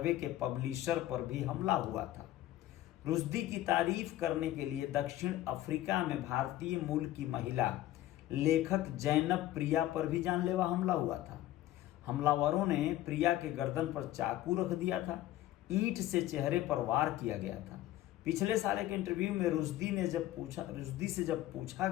के पब्लिशर पर भी हमला हुआ था। रुश्दी की तारीफ करने के लिए दक्षिण अफ्रीका में भारतीय मूल की महिला लेखक जैनब प्रिया पर भी जानलेवा हमला हुआ था। हमलावरों ने प्रिया के गर्दन पर चाकू रख दिया था, ईंट से चेहरे पर वार किया गया था। पिछले साल एक इंटरव्यू में रुश्दी से जब पूछा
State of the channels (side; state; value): right; quieter; 14.5 dB